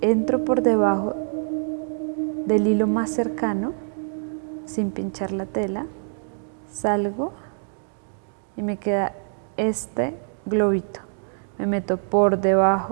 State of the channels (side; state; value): left; silent; digital silence